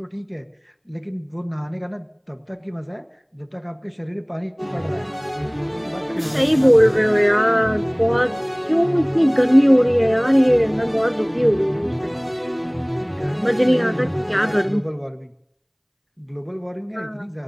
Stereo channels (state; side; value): identical; both; correlation 1.00